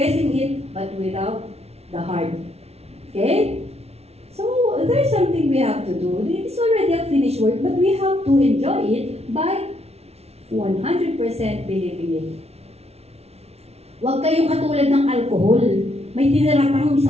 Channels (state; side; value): late; left; 0.31 ms